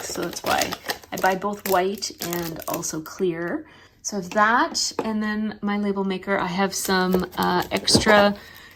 so that's why I buy both white and also clear. So I have that, and then my label maker, I have some extra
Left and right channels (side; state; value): both; identical; correlation 1.00